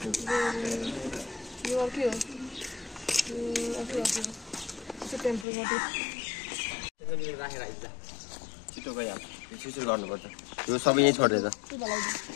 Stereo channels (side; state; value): right; drops out; at 5.5 s